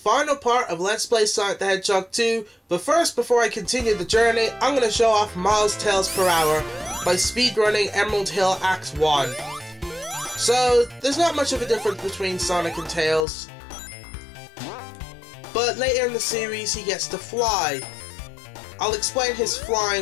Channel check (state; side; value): drops out; right; at 13.2 s